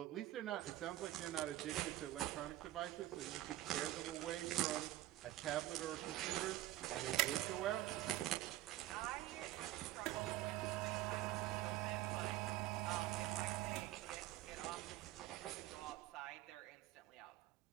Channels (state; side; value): quieter; left; 15.3 dB